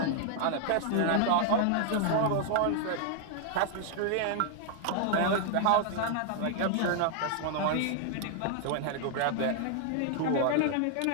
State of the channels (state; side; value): different; both; correlation 0.00